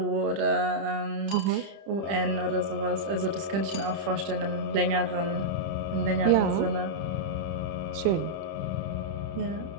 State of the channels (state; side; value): late; left; 30 ms